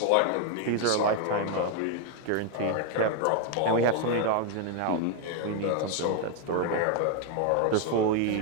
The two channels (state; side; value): different; both; correlation 0.01